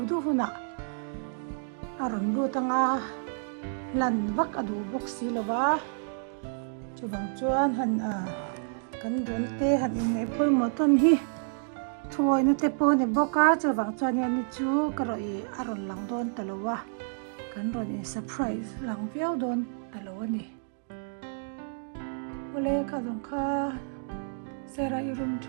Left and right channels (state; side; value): silent; left; digital silence